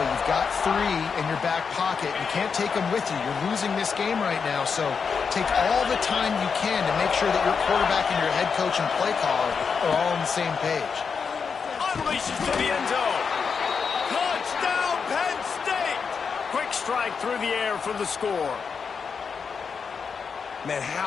You've got 3 in your back pocket. You can't take them with you. You're losing this game right now, so take all the time you can to make sure that your quarterback and your head coach and play caller are all on the same page. Unleashes to the end zone. Touchdown, Penn State! Quick strike through the air for the score. Man,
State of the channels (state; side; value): quieter; right; 5.8 dB